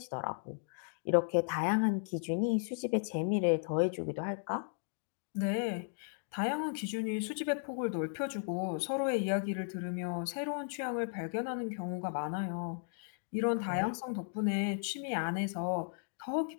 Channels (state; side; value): silent; right; digital silence